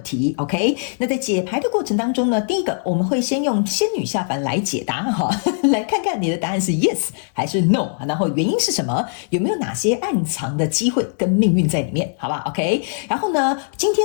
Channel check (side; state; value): right; silent; digital silence